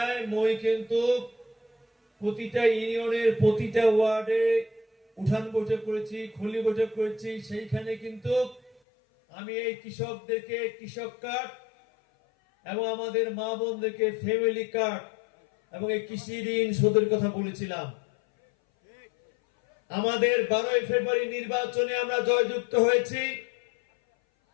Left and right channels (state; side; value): drops out; right; at 8.7 s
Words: মই কিন্তু প্রতিটা ইউনিয়নের প্রতিটা ওয়ার্ডে উঠান বৈঠক করেছি, খুলি বৈঠক করেছি। সেইখানে কিন্তু আমি এই কৃষকদেরকে কৃষক কার্ড এবং আমাদের মা বোনদেরকে ফ্যামিলি কার্ড এবং এই কৃষি ঋণ শোধের কথা বলেছিলাম। আমাদের 12ই ফেব্রুয়ারি নির্বাচনে আমরা জয়যুক্ত হয়েছি।